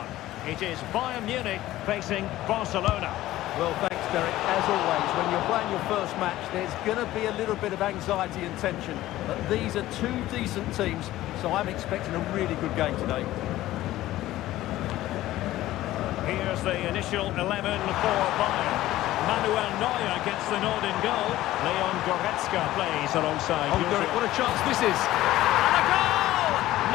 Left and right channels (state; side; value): quieter; right; 15.4 dB